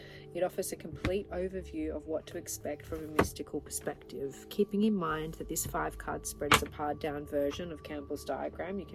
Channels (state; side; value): identical; both; correlation 1.00